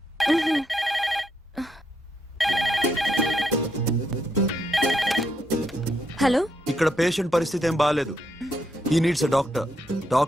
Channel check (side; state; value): both; normal; correlation 0.78